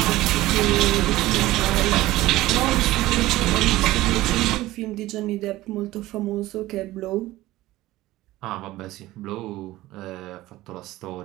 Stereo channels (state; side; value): quieter; left; 17.0 dB